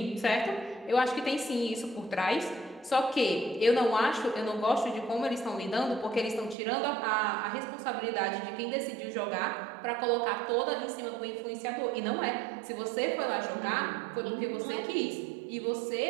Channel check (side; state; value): left; drops out; at 6.6 s